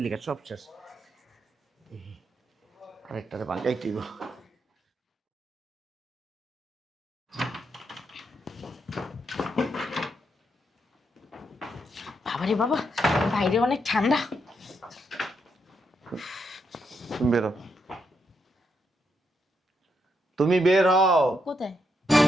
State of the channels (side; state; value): both; normal; correlation 0.80